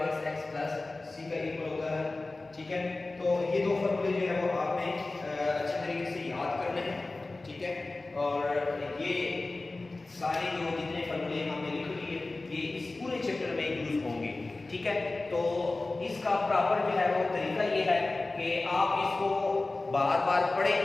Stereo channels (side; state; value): right; quieter; 3.2 dB